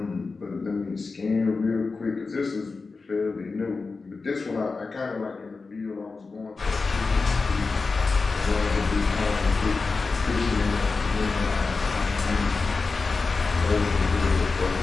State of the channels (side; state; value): right; quieter; 4.2 dB